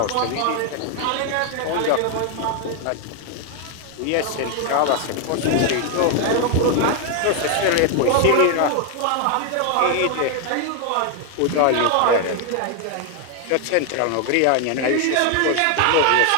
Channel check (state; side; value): different; both; correlation 0.00